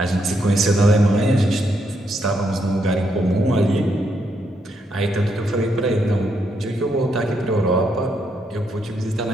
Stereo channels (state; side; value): normal; both; correlation 0.77